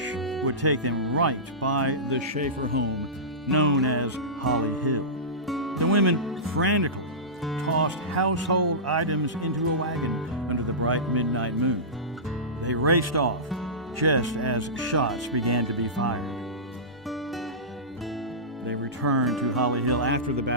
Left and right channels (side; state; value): both; normal; correlation -0.19